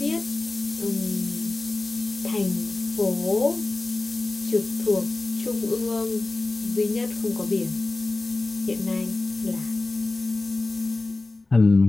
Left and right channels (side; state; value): right; quieter; 3.2 dB